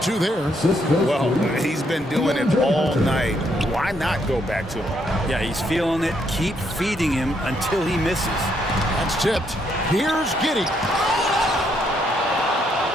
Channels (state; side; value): normal; both; correlation 0.74